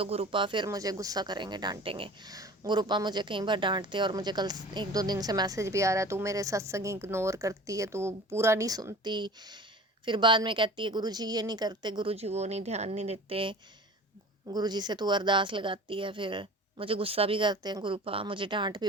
गुरुपा फिर मुझे गुस्सा करेंगे, डांटेंगे। गुरुपा मुझे कई बार डांटते, और मुझे कल 1-2 दिन से मैसेज भी आ रहा है, तू मेरे सत्संग इग्नोर करती है, तू पूरा नहीं सुनती। फिर बाद में कहती है गुरुजी ये नहीं करते, गुरुजी वो नहीं, ध्यान नहीं देते, गुरुजी से तू अरदास लगाती है। फिर मुझे गुस्सा भी करते हैं गुरुपा, मुझे डांट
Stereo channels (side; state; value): both; normal; correlation 0.41